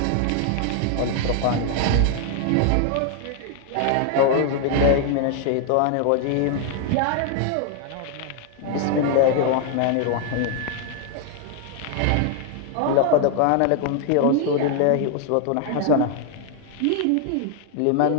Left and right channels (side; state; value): both; different; correlation 0.00